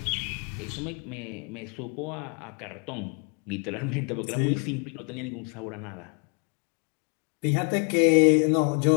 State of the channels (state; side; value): quieter; right; 37.8 dB